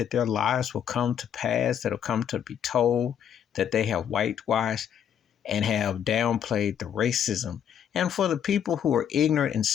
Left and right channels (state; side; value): quieter; right; 9.0 dB